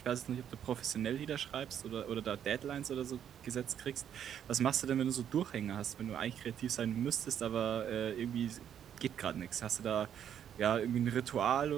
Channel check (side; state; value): left; quieter; 9.3 dB